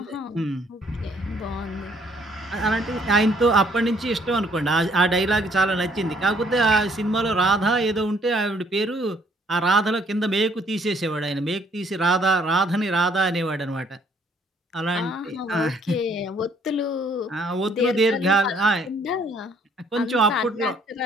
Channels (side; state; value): both; normal; correlation 0.64